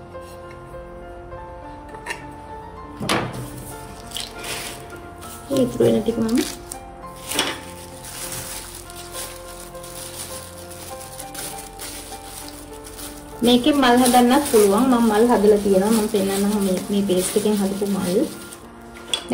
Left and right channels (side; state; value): both; identical; correlation 1.00